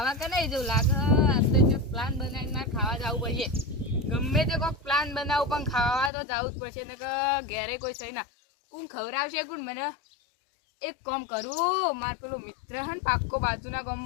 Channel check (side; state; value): right; drops out; at 6.1 s